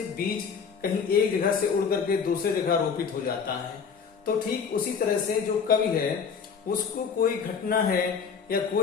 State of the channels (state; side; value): quieter; right; 6.2 dB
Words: बीज कहीं एक जगह से उड़ करके दूसरे जगह रोपित हो जाता है, तो ठीक उसी तरह से जो कवि है उसको कोई घटना है या